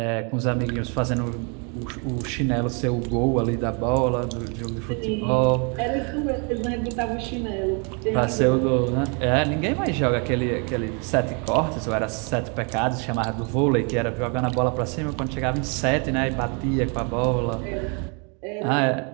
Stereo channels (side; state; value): left; quieter; 35.6 dB